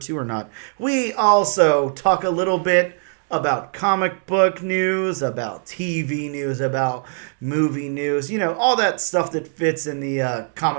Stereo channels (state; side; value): silent; left; 65 dB below the other